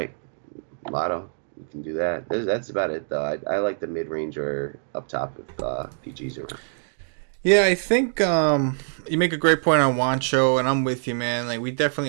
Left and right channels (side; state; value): left; silent; digital silence